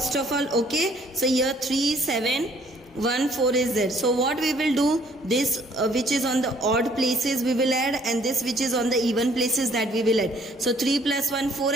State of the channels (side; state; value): both; normal; correlation 0.61